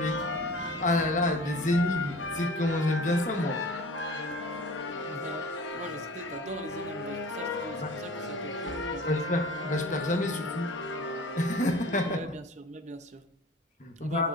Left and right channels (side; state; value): both; normal; correlation 0.42